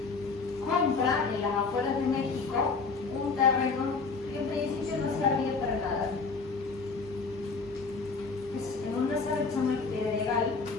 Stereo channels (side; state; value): right; quieter; 4.5 dB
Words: compra en las afueras de México un terreno que en principio no servía para nada. Es en una zona que se llama el Pedregal,